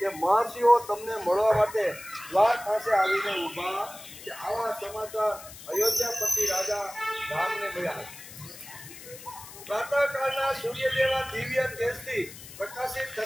મહર્ષિઓ તમને મળવા માટે દ્વાર પાસે આવીને ઊભા છે. આવા સમાચાર અયોધ્યાપતિ રાજા રામને મળ્યા. પ્રાતઃકાળના સૂર્ય જેવા દિવ્ય તેજથી પ્રકાશિત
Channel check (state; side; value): noise; left; hiss, 15 dB below the sound